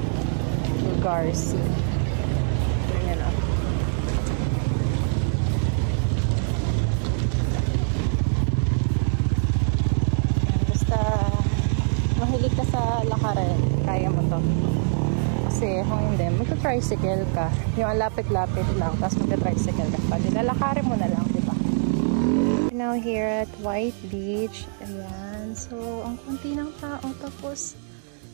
lugar. Ayan o. Basta mahilig ka sa lakarin, kaya mo to. Kasi kung hindi, magta-tricycle ka. Yung lapit-lapit lang, tapos magta-tricycle ka pa. Nilalakarin mo na lang, diba? Now here at White Beach. Ayan. So, ang kunti ng tao. Tapos,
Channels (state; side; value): silent; left; digital silence